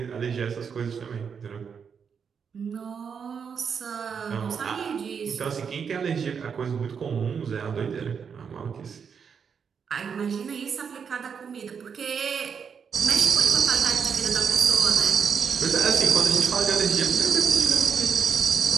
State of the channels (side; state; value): left; quieter; 6.6 dB